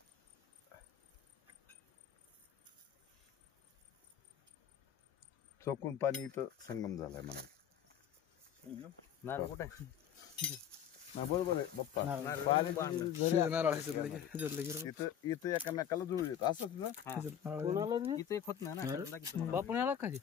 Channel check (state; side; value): quieter; right; 9.1 dB